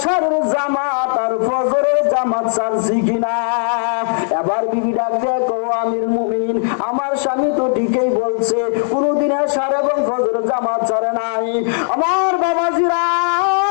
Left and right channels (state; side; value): silent; right; 62 dB below the other